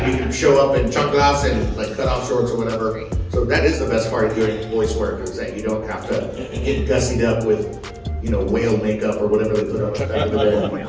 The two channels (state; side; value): identical; both; correlation 1.00